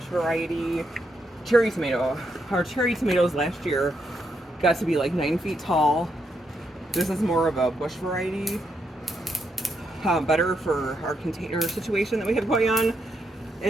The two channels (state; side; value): normal; both; correlation 0.79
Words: variety cherry tomato. Our cherry tomatoes last year got to be like 9 feet tall. This is more of a Bush variety. Better for our container situation that we have going on.